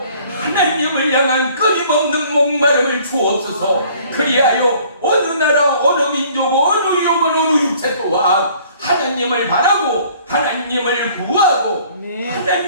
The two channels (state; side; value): inverted; both; correlation -0.55